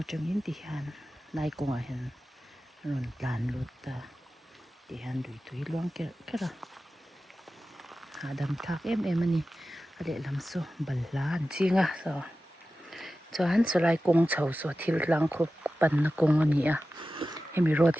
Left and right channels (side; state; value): both; normal; correlation 0.94